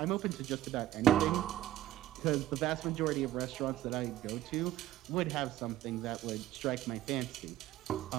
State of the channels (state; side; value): quieter; left; 13.6 dB